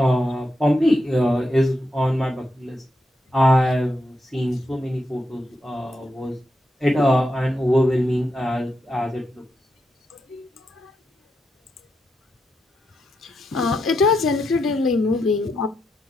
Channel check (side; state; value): both; normal; correlation 0.84